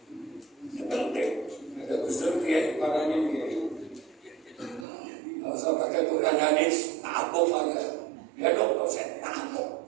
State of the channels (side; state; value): left; drops out; at 4.9 s